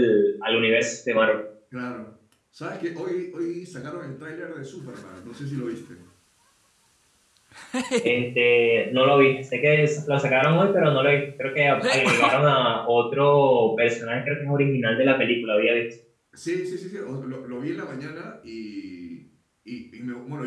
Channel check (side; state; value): both; identical; correlation 1.00